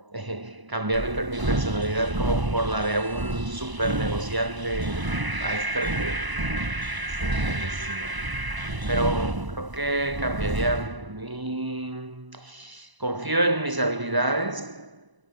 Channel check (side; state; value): left; late; 1.0 ms